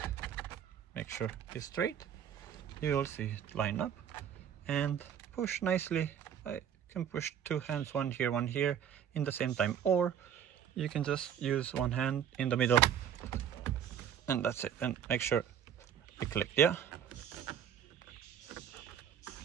make sure it's straight, you will see it line up, and push nicely. I can push two hands, one here in the same time, or you can just use one hand in the middle and that's it, and make sure it clicked. Yeah,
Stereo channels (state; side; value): quieter; left; 9.0 dB